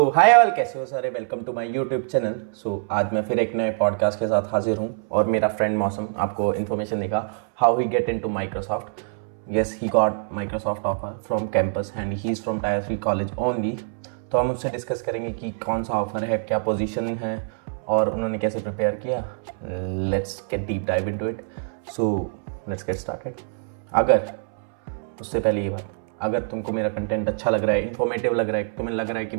hi all, कैसे हो सारे। Welcome to my YouTube channel. आज मैं फिर एक नए पॉडकास्ट के साथ हाजिर हूँ और मेरा फ्रेंड मौसम आपको इन्फॉर्मेशन देगा how he get into Microsoft. Yes, he got Microsoft offer from campus and he is from tyre 3 college only. तो हम उससे डिस्कस करेंगे कि कौन सा ऑफर है, क्या पोजीशन है और उन्होंने कैसे प्रिपेयर किया। Let's get deep dive into it. So let's get started. अगर उससे पहले ये बात, अगर तुमको मेरा कंटेंट अच्छा लग रहा है, इन्फॉर्मेटिव लग रहा है, तुम्हें लग रहा है कि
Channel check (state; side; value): silent; left; 62 dB below the other